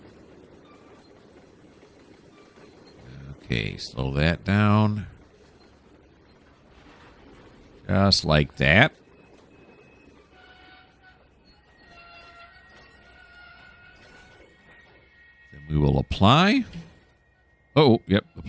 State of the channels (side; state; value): both; identical; correlation 1.00